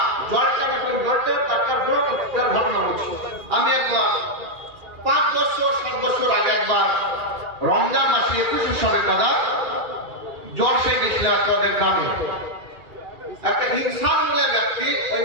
জলটা একটা ঘটনা হচ্ছে। আমি একবার 5 বছর 7 বছর আগে একবার রমজান মাসে 21 সালে দাদা জ্বর সে গেছিল আপনাদের গ্রামে। একটা ইনসান বলে ব্যক্তি ওই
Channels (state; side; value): late; left; 2.4 ms